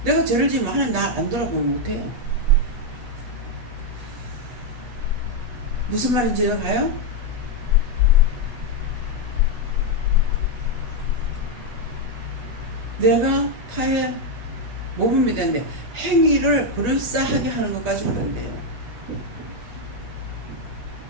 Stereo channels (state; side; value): late; left; 8.3 ms